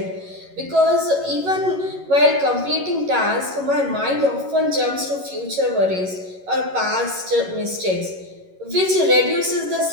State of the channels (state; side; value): late; left; 11 ms